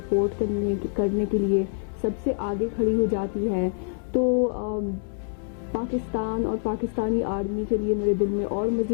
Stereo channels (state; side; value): silent; right; 61 dB below the other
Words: کرنے کے لیے سب سے آگے کھڑی ہو جاتی ہے. تو پاکستان اور پاکستانی آرمی کے لیے میرے دل میں اور